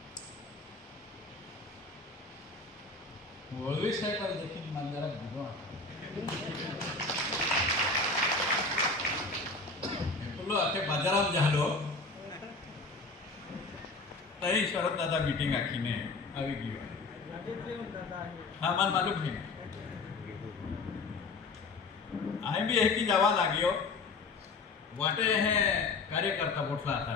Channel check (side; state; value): right; quieter; 3.7 dB